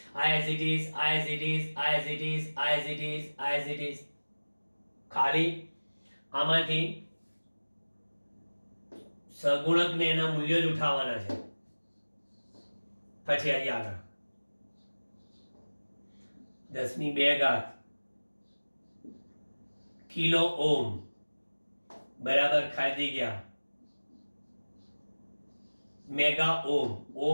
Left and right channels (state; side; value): inverted; both; correlation -1.00